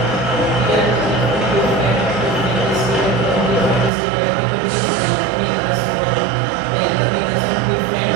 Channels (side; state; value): left; drops out; at 3.9 s